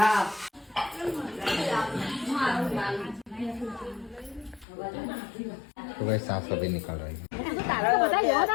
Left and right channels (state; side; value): drops out; right; at 4.7 s